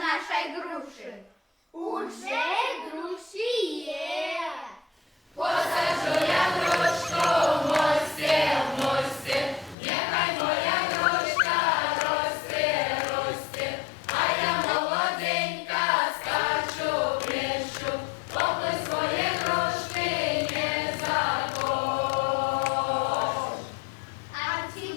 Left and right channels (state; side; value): drops out; right; at 9.8 s